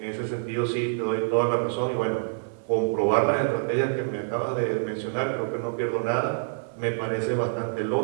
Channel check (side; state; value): left; silent; digital silence